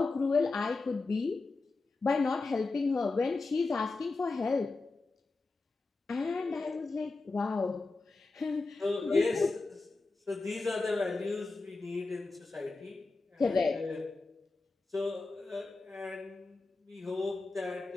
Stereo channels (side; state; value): right; quieter; 3.6 dB